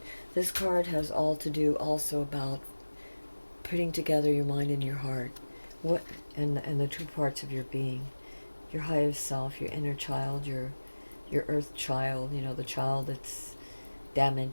This card has all to do also about putting together your mind and your heart, and the two parts of your being, your highest self, your inner child, your earth child, the child that's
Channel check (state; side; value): inverted; both; correlation -1.00